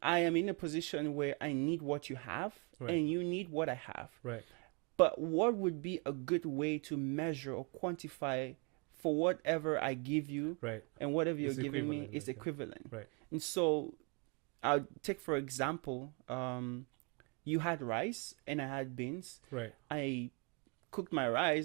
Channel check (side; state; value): left; quieter; 34.0 dB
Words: I am in a position where I need what you have, Right. and you need what I have. Right. But what would be a good way to measure or quantify for whatever I give you, Right. and whatever you're It's giving me equivalent, is like, equivalent. Right. And so I'll take, for example, you had rice and I had beans. Right. I cooked my